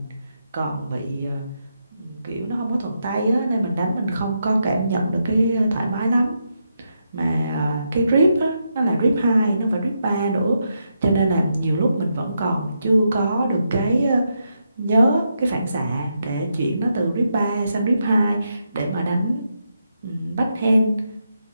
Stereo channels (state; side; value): inverted; both; correlation -0.82